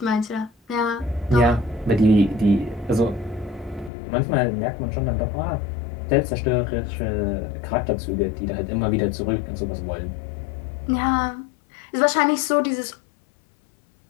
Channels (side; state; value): right; drops out; at 3.9 s